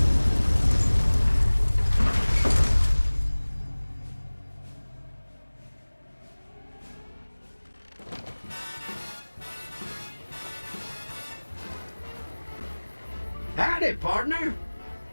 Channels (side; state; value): both; inverted; correlation -1.00